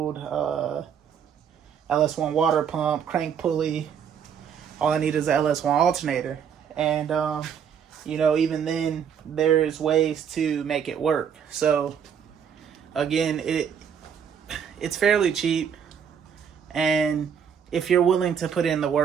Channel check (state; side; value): quieter; left; 7.8 dB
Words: LS1 water pump, crank pulley. All I need is the LS1 alternator. And, even then, there's ways to make it work. So, again, it's fairly cheap. And if you're willing to put in the